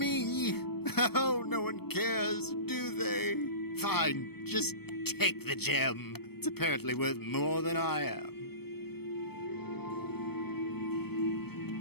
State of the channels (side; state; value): right; late; 0.96 ms